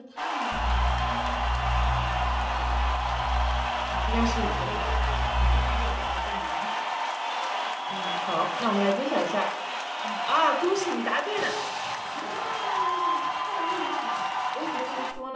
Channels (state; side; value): identical; both; correlation 1.00